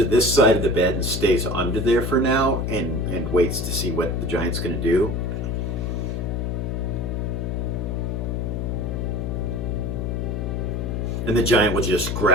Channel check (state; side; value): noise; left; hum, 1 dB below the sound